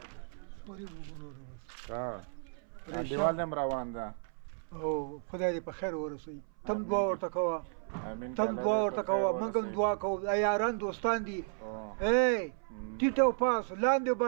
سوري به وګورو بس ها انډیوال هم روان ده او خدای دې په خیر ورسوي تم دعا ورته کوه امین تم دعا ورته کوه موږ هم دعا کوو دا یاران دوستان دي ای ټیټ او پاس لاندې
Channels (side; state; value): left; silent; 55 dB below the other